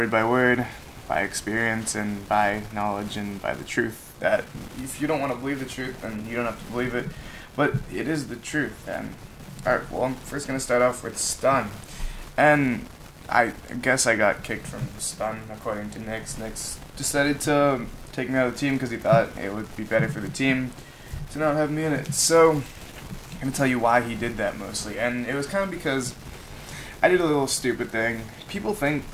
by word, by experience and by knowledge and by the truth. That if you don't want to believe the truth, then you don't have to believe it, but it is the truth. And alright, well, I'm first gonna start off with Stun, and I guess I got kicked from Stun according to Nix. Nix decided to take me out of the team because he thought it would be better for the team to not have me in it. So I'm gonna tell you why he did that mostly, and it was kind of because I did a little stupid thing. People think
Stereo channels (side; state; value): both; identical; correlation 1.00